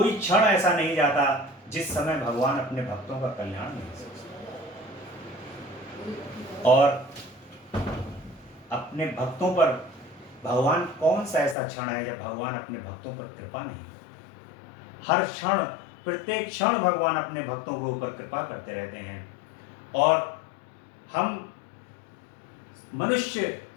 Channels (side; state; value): right; drops out; at 11.6 s